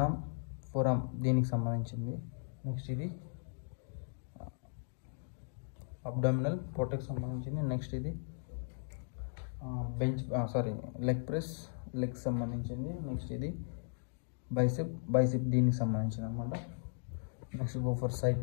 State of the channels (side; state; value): right; silent; digital silence